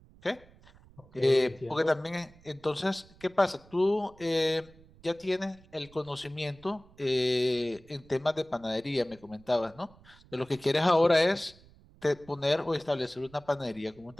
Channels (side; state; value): right; noise; rumble, 25 dB below the sound